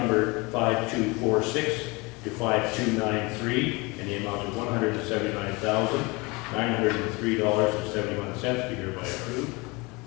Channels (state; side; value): quieter; right; 25.9 dB